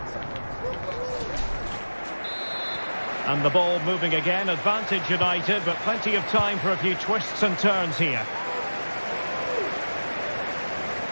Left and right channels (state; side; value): inverted; both; correlation -1.00